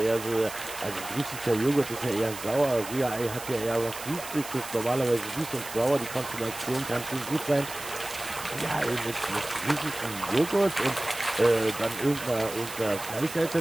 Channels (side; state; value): right; noise; hiss, 12 dB below the sound